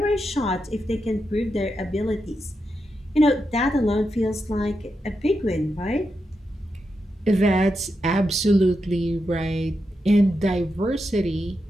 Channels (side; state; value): both; normal; correlation 0.86